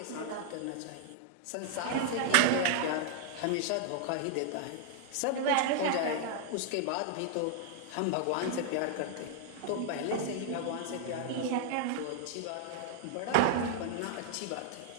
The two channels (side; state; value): both; different; correlation 0.00